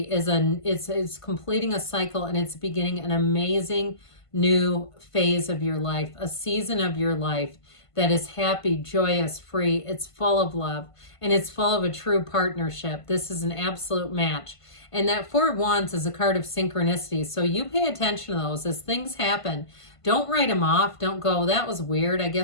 completing a cycle, and it's beginning an amazing new phase of your life, a season of your life that is happy, joyous, free. It's full of love, and it's full of a true partnership. This is an absolute match. And that Four of Wands is a card of synchronicities. So you pay attention to those as things happen. Don't write them off. Don't go, that was weird. I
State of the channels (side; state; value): right; late; 1.5 ms